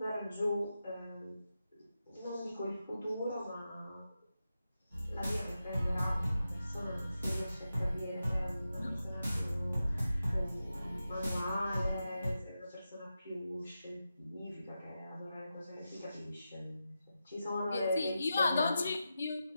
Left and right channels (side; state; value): both; inverted; correlation -0.90